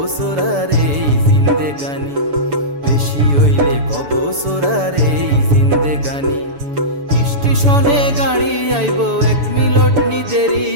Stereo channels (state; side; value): late; left; 7.0 ms